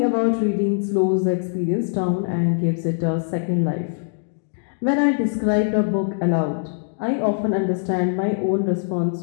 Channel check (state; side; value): silent; right; digital silence